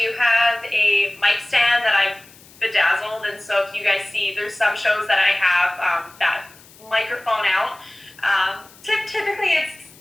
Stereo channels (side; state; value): left; noise; hiss, 24 dB below the sound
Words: have a mic stand that I've bedazzled, and so if you guys see, there's some shows that I have that microphone out. Typically, it's